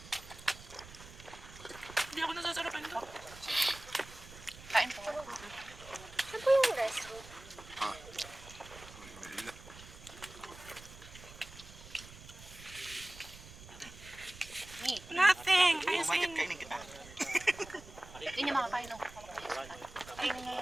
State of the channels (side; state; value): right; noise; rumble, 17 dB below the sound